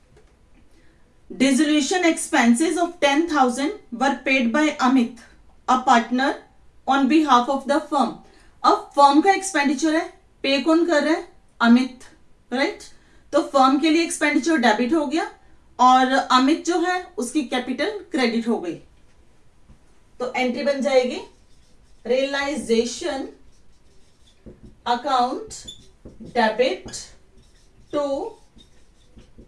dissolution expenses of 10,000 were paid by Amit a partner on behalf of the firm. अब फर्म का एक्सपेंडिचर है, पे कौन कर रहा है, अमित, राइट. तो फर्म के लिए एक्सपेंडिचर डेबिट हो गया और अमित जो है उसकी कैपिटल क्रेडिट हो गई. तो एंट्री बन जाएगी realisation account debit to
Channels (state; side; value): identical; both; correlation 1.00